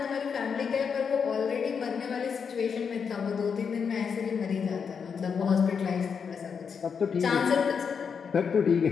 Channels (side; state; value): right; quieter; 6.4 dB